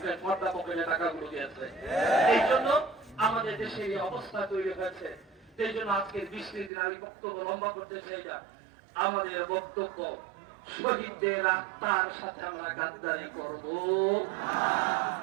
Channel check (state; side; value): drops out; left; at 6.7 s